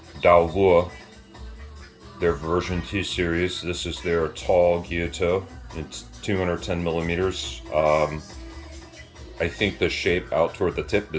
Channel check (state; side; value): identical; both; correlation 1.00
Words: Dao Vua, their version 2 series. This is their tall gyuto. It's 210 millimeters. I think the shape out toward the tip